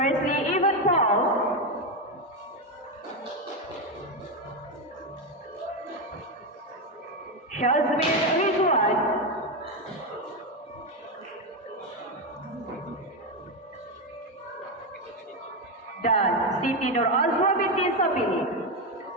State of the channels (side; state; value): both; normal; correlation 0.09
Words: Evan Paul, Shazmin Ridwan, dan Siti Nur Azwa binti Sabili.